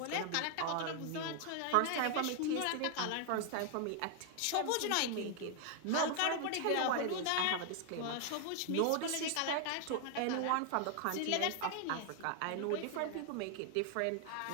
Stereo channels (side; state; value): both; different; correlation 0.00